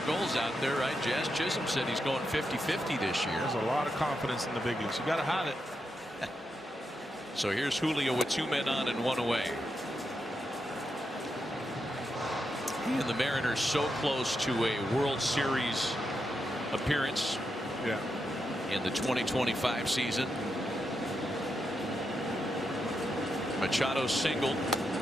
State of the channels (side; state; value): both; normal; correlation 0.85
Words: goals out there, right? Jazz Chisholm said he's going 50-50 this year. There's a lot of confidence in the big leagues. You got to have it. So here's Julio with 2 men on and 1 away. And the Mariners so close to a World Series appearance in the 2025 season. Machado singled.